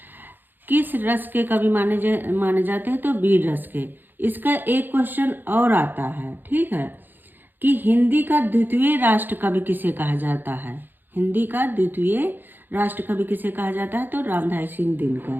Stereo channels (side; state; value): left; late; 0.092 ms